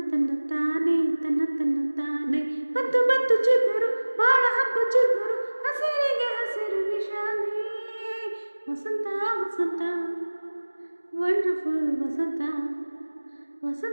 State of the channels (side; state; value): both; inverted; correlation -1.00